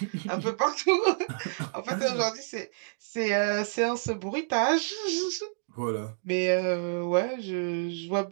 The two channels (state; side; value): silent; left; digital silence